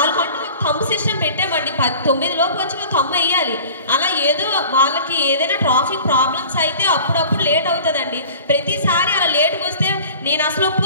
ఒక థంబ్ సిస్టమ్ పెట్టామండి. 9 లోపు వచ్చి థంబ్ వేయాలి. అలా ఏదో వాళ్ళకి ఏదైనా ట్రాఫిక్ ప్రాబ్లమ్స్ అయితే అప్పుడప్పుడు లేట్ అవుతుందండి. ప్రతిసారి అలా లేట్కి వస్తే నేను అసలు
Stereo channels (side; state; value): both; inverted; correlation -0.43